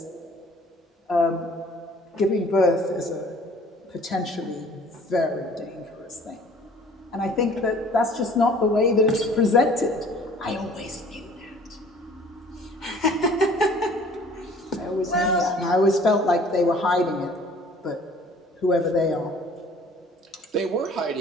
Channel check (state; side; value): normal; both; correlation 0.52